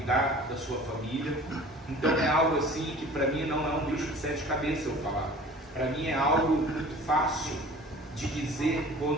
da sua família. Então é algo assim que para mim não é um bicho de sete cabeças eu falar. Para mim é algo muito fácil de dizer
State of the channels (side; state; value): both; normal; correlation 0.45